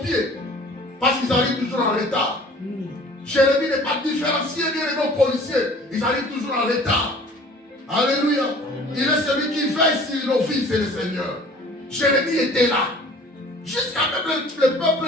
Parce qu'ils arrivent toujours en retard. Jérémie n'est pas différencié bien aux policiers. Ils arrivent toujours en retard. Alléluia. Il est celui qui veille sur nos vies, c'est le Seigneur. Jérémie était là. Jusqu'à même le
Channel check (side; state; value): both; normal; correlation 0.48